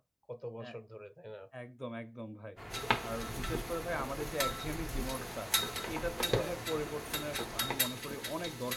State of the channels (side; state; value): both; identical; correlation 1.00